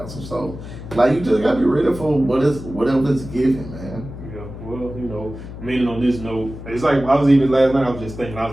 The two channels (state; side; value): noise; left; hum, 12 dB below the sound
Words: So, you just got to be ready for whatever it's given, man. Yeah, well, meaning on this note, it's like I was even last night, I was just thinking, I